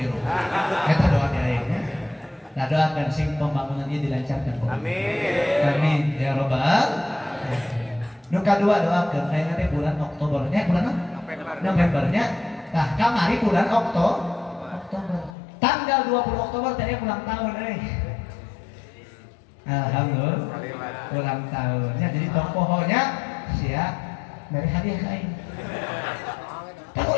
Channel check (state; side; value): drops out; right; at 15.4 s